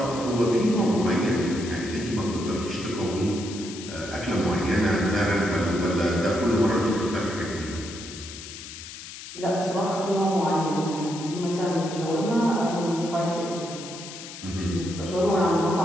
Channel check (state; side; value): noise; left; hiss, 12 dB below the sound